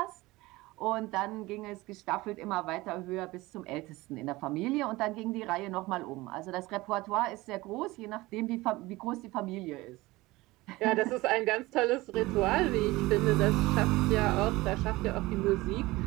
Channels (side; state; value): left; quieter; 20.1 dB